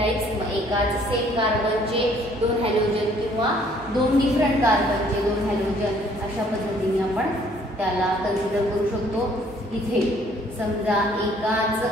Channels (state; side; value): normal; both; correlation 0.60